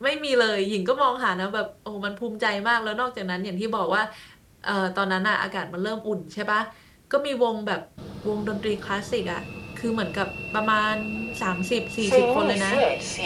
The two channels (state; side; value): identical; both; correlation 1.00